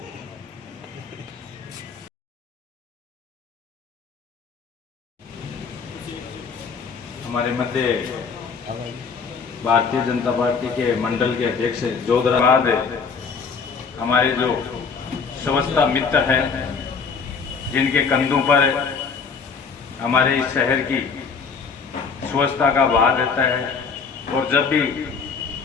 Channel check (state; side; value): quieter; right; 5.5 dB